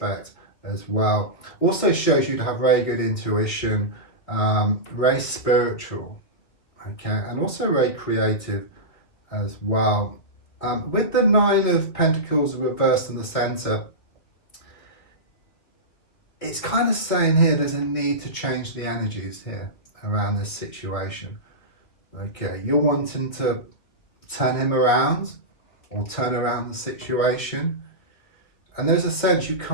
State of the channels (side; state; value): right; late; 2.3 ms